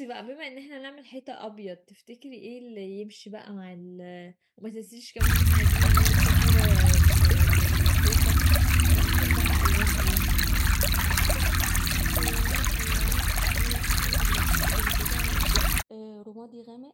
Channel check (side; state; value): both; identical; correlation 1.00